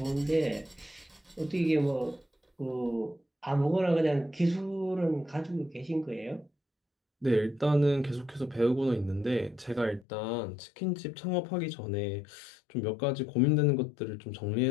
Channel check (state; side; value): drops out; right; at 10.1 s